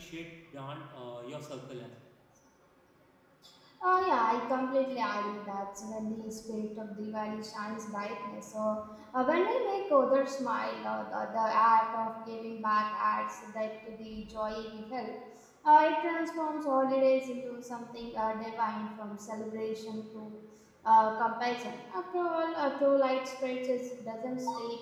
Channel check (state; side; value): identical; both; correlation 1.00